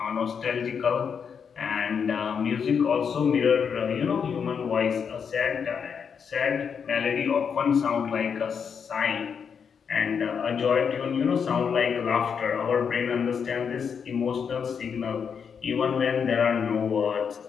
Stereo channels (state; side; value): quieter; right; 6.7 dB